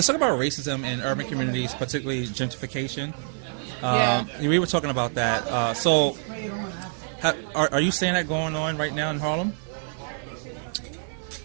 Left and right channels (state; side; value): silent; left; 61 dB below the other